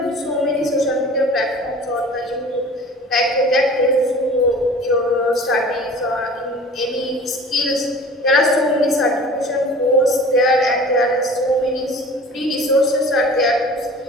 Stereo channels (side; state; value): both; normal; correlation 0.43